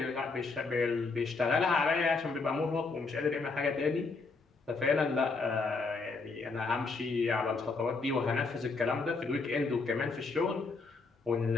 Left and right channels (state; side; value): quieter; right; 4.1 dB